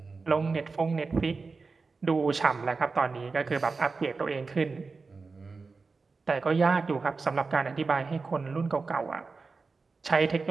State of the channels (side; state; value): left; quieter; 4.3 dB